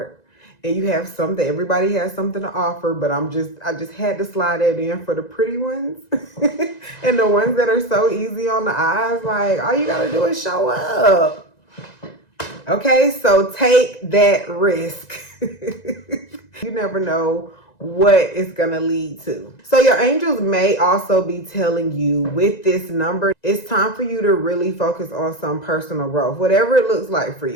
And you have something. Everybody has something to offer. But I just had to slide that in for the pretty ones. And the ones that are so easy on the eyes. Like, all you got to do is show up. Okay, so take that risk. You never know what it's going to lead to. So your angels may also be telling you with this number, it's time for you to really focus on some personal growth, whatever it looks like for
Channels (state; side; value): late; right; 1.9 ms